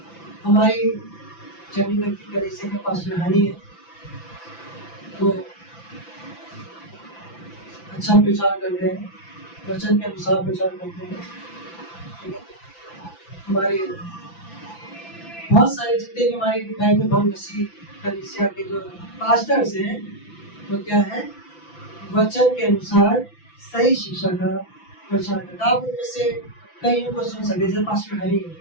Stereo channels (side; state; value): right; late; 5.9 ms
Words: हमारी चंडीगढ़ की कलीसिया में पास्टर हनी है, वो अच्छा प्रचार करते हैं, वचन के अनुसार प्रचार करते हैं। ठीक है, हमारे बहुत सारे जितने भी हमारे बाइबल बहुत मसीह कलीसिया के जो पास्टर्स हैं वो क्या है? वचन के अनुसार सही शिक्षा का प्रचार करता है। आप उनमें से कईयों को सुन सकते, जैसे पास्टर हरी है।